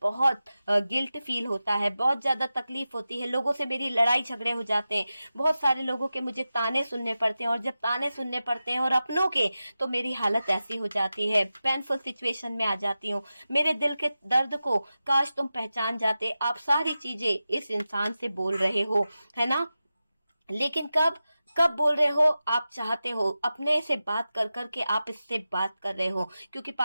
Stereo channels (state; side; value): inverted; both; correlation -0.93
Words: बहुत गिल्ट फील होता है, बहुत ज्यादा तकलीफ होती है। लोगों से मेरी लड़ाई झगड़े हो जाते हैं, बहुत सारे लोगों के मुझे ताने सुनने पड़ते हैं, और जब ताने सुनने पड़ते हैं और अपनों के, तो मेरी हालत ऐसी हो जाती है, पेनफुल सिचुएशन में आ जाती हूँ। मेरे दिल के दर्द को काश तुम पहचान जाते। आप सारी चीजें इस इंसान से बोल रहे हो, है ना? लेकिन कब? कब बोल रहे हो आप चाहते हो, अपने से बात कर कर के आप इससे बात कर रहे हो, क्योंकि